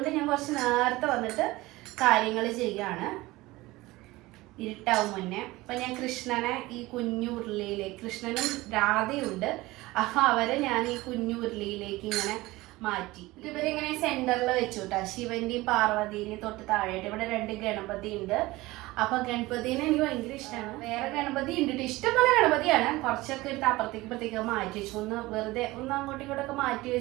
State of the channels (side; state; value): left; quieter; 19.8 dB